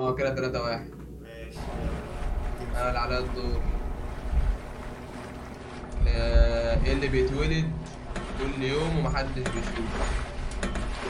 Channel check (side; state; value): both; identical; correlation 1.00